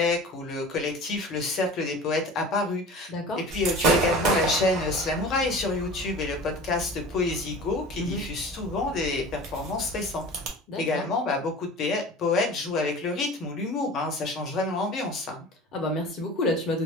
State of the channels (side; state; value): both; normal; correlation 0.38